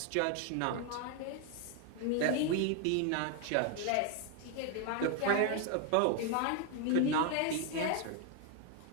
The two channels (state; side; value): different; both; correlation 0.01